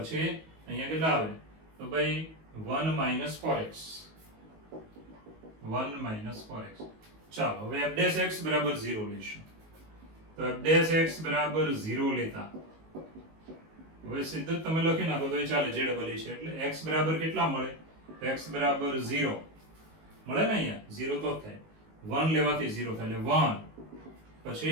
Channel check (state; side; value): late; left; 19 ms